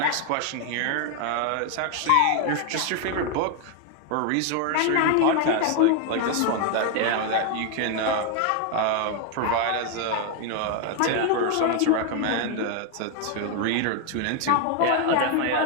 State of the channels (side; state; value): both; different; correlation 0.01